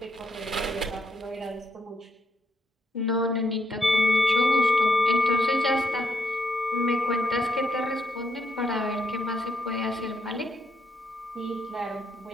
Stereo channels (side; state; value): both; normal; correlation 0.77